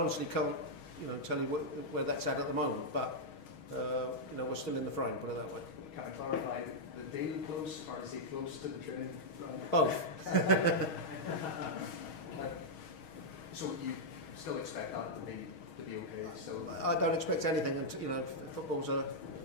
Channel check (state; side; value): late; right; 6.3 ms